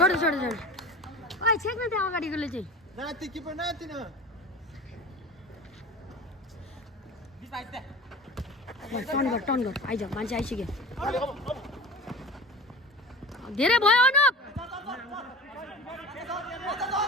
छोड छोड ओइ छेक्न त्यहाँ अगाडिकोले चाहिँ टर्न गर आइज मान्छे आइसक्यो धेरै भयो अनुप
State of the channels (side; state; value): both; normal; correlation 0.35